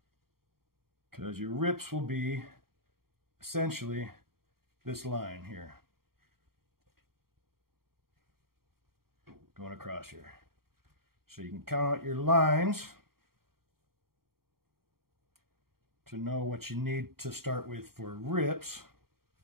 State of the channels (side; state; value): left; late; 0.93 ms